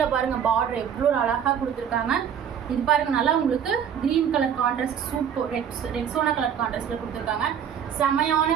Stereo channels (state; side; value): quieter; left; 8.4 dB